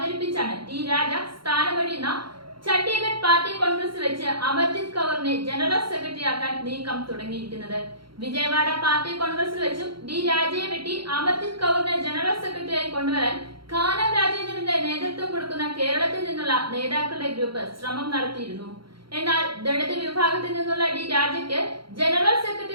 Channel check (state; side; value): late; left; 0.73 ms